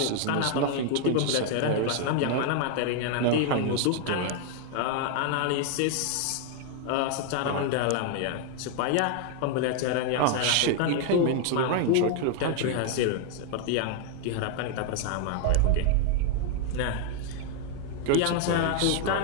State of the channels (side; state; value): both; different; correlation 0.00